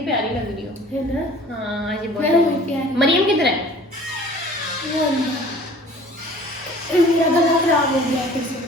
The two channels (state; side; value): normal; both; correlation 0.48